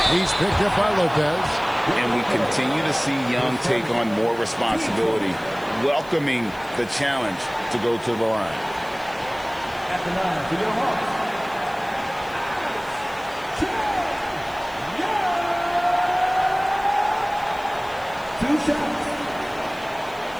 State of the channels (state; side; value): noise; left; hiss, 24 dB below the sound